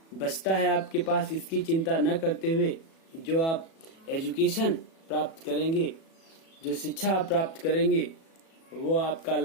बचता है आपके पास, इसकी चिंता न करते हुए जो आप एजुकेशन प्राप्त करेंगे, जो शिक्षा आप प्राप्त करेंगे, वो आपका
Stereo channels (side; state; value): right; late; 37 ms